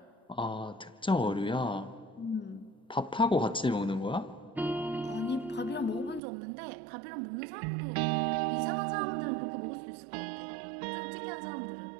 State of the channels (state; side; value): drops out; left; at 6.2 s